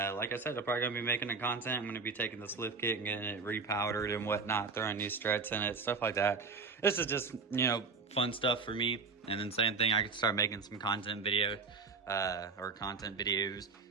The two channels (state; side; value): quieter; left; 4.7 dB